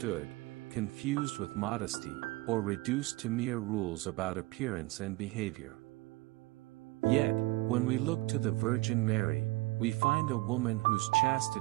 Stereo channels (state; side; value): quieter; left; 21.1 dB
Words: confused with modesty, or reduced to mere rules about appearance and behavior. Yet, when we look to the Virgin Mary, we find a woman whose